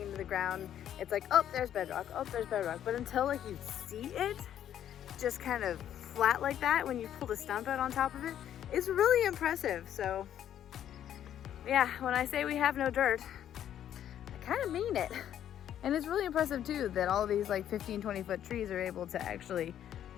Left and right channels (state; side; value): quieter; right; 10.5 dB